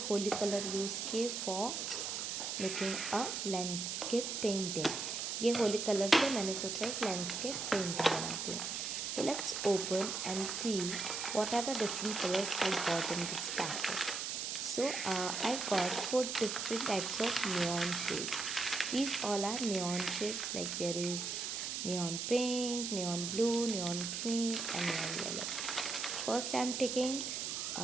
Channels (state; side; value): noise; right; hiss, 3 dB below the sound